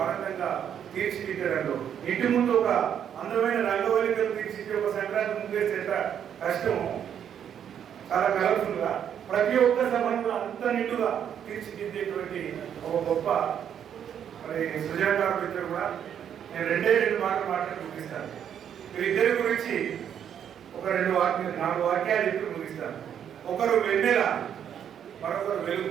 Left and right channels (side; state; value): left; quieter; 8.9 dB